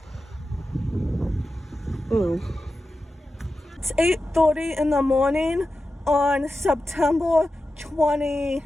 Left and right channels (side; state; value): both; normal; correlation 0.92